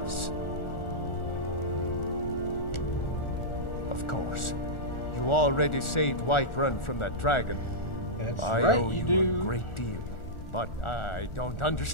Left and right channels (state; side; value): late; right; 1.4 ms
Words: Of course. You already saved Whiterun from that dragon. That's I right, owe you you do. a great deal. But I don't